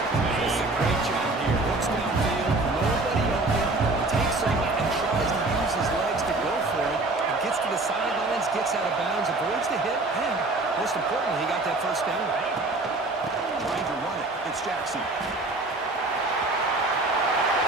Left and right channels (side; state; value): left; quieter; 3.1 dB